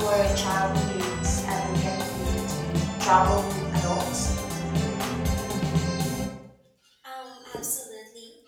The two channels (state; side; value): identical; both; correlation 1.00